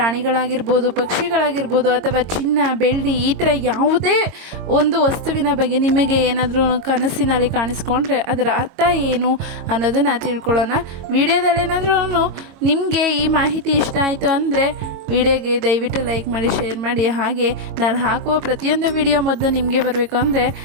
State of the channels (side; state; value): left; late; 22 ms